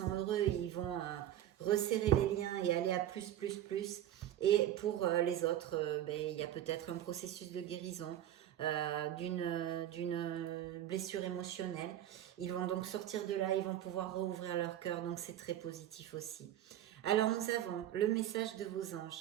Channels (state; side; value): quieter; left; 11.9 dB